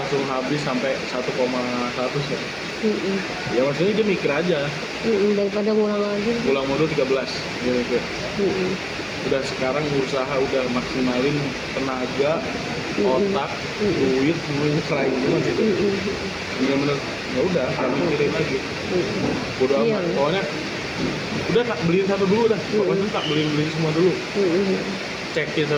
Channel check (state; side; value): noise; right; hum, 28 dB below the sound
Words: habis sampai 1,1 ya. Ya maksudnya dia mikir aja. Daripada ngulang lagi. Pulang modul 13 dia mikir. Udah sekarang usaha udah maksimalin tenaga, otak, duit, semuanya serahin semua gitu. Bener-bener ya udah, gak mikirin lagi. Udah Iya. amat. Pokoknya udah tak beliin satu dulu dah. Pokoknya tak beliin semua dulu. Cekin